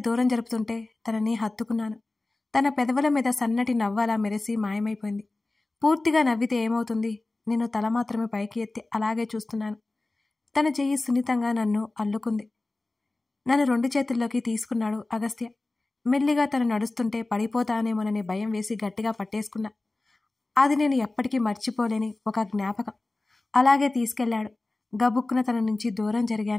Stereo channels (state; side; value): quieter; right; 3.0 dB